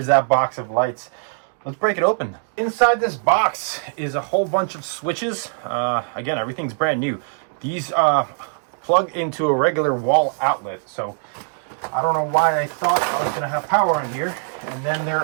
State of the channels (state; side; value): silent; left; digital silence